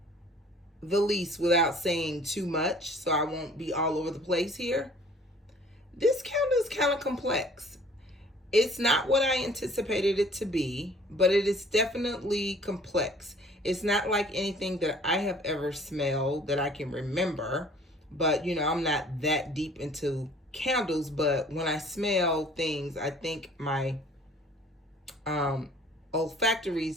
the least without saying too much, so I won't be all over the place here, this candle is kind of complex. It's not what I anticipated it to be, but it is definitely complex. It's not like anything that I have ever smelled that I can remember, but you know, I'm not that deep into candles, but when I smell things, I think my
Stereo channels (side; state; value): both; normal; correlation 0.52